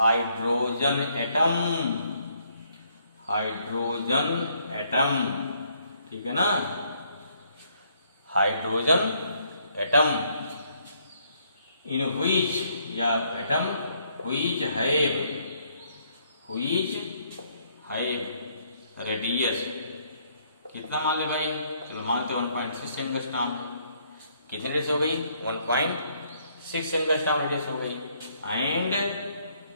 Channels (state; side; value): inverted; both; correlation -0.69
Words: atom, ठीक है ना। हाइड्रोजन एटम इन व्हिच, या एटम व्हिच हैव रेडियस, कितना मान ले भाई? चलो मानते 1.6 एंगस्ट्रॉम। कितनी रेडियस हो गई? 1.6 एंगस्ट्रॉम रेडियस हो गई। एंड